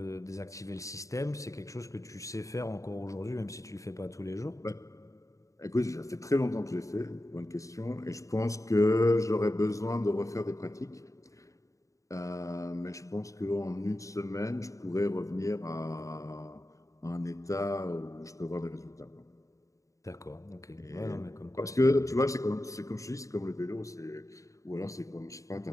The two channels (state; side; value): late; right; 0.16 ms